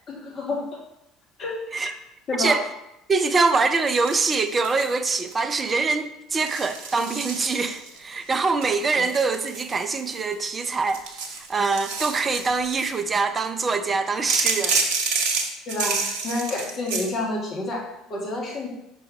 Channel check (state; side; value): quieter; left; 3.2 dB